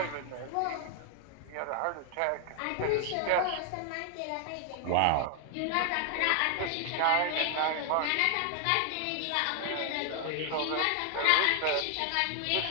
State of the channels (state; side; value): different; both; correlation 0.00